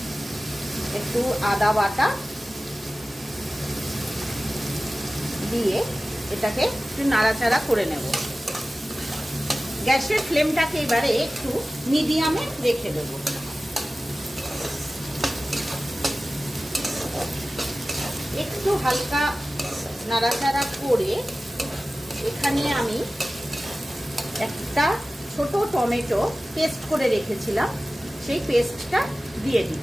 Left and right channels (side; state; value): both; normal; correlation 0.96